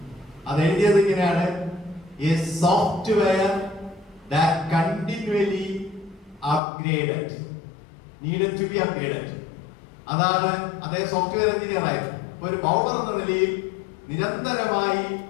അത് എഴുതിയത് ഇങ്ങനെയാണ്: a software that continually upgraded, needed to be upgraded. അതാണ് അദ്ദേഹം സോഫ്റ്റ്വെയർ എഞ്ചിനീയർ ആയിരുന്നു. ഒരു ബൗളർ എന്ന നിലയിൽ നിരന്തരമായി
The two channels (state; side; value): drops out; right; at 6.6 s